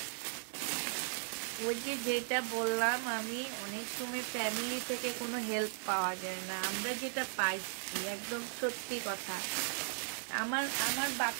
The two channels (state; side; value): silent; left; digital silence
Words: ওই যে যেটা বললাম আমি, অনেক সময় ফ্যামিলি থেকে কোনো হেল্প পাওয়া যায় না, আমরা যেটা পাইছি একদম সত্যি কথা। আমার